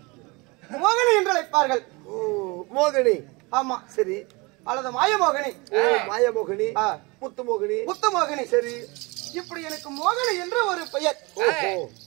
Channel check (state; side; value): quieter; left; 26.1 dB